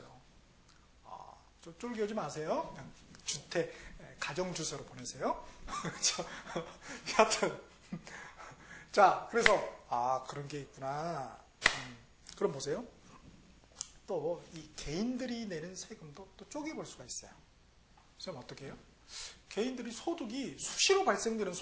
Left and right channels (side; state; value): both; identical; correlation 1.00